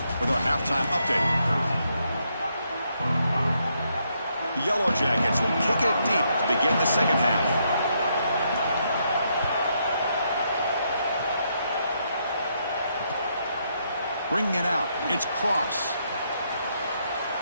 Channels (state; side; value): inverted; both; correlation -0.77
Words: with our halftime update. The Yellow Jackets will kick it deep to begin the second half. Bringing it out. It's Cross.